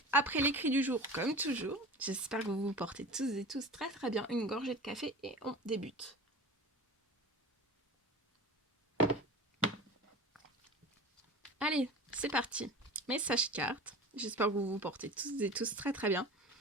Après l'écrit du jour, comme toujours. J'espère que vous vous portez tous et tous très très bien. Une gorgée de café et on débute. Allez, c'est parti. Message carte. J'espère que vous vous portez tous et tous très très bien.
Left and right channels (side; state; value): both; normal; correlation 0.35